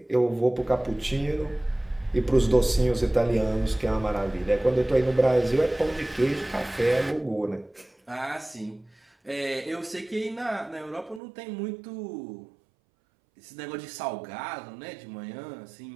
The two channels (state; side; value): drops out; left; at 11.2 s